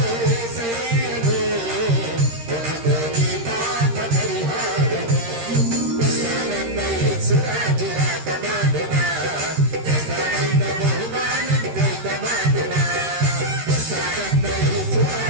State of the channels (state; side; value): late; left; 13 ms